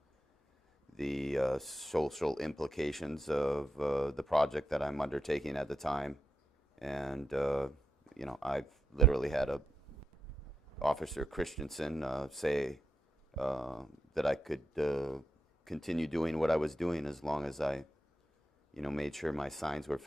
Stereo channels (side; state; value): both; normal; correlation 0.85